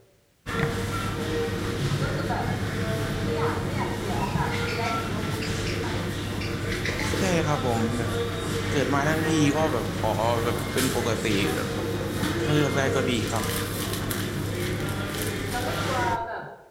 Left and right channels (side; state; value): both; identical; correlation 1.00